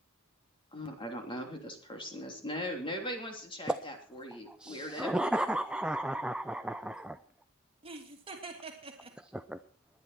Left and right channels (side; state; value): both; normal; correlation 0.70